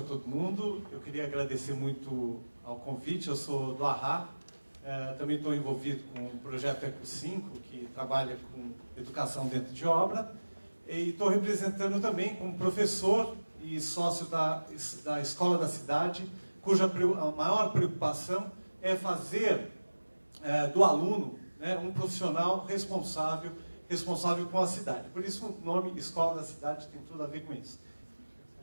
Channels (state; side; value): inverted; both; correlation -1.00